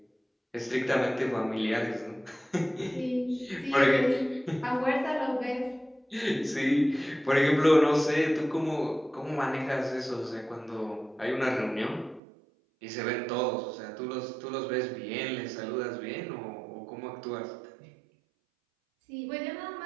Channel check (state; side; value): drops out; left; at 12.2 s